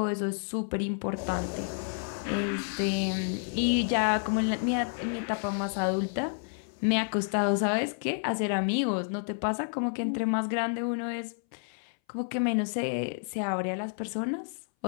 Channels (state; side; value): silent; right; 58 dB below the other